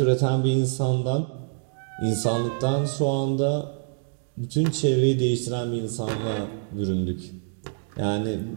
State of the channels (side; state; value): left; silent; digital silence